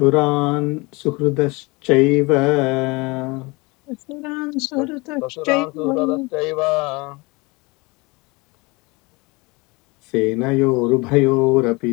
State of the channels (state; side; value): quieter; right; 25.6 dB